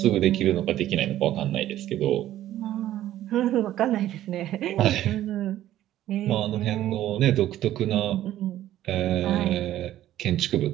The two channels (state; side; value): quieter; left; 13.1 dB